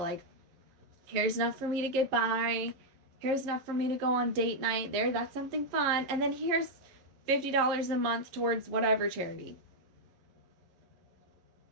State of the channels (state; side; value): late; left; 11 ms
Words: here's enough for me to get by. Here's enough for me to go on date night. That's something fun. And then here's $50 a month towards whatever charity.